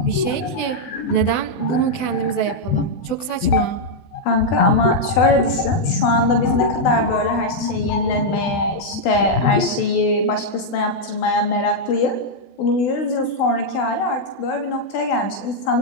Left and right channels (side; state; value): right; late; 16 ms